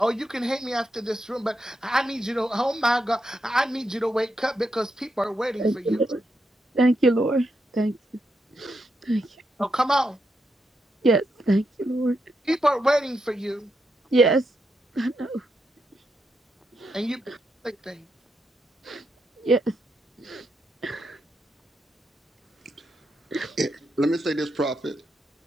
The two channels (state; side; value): normal; both; correlation 0.83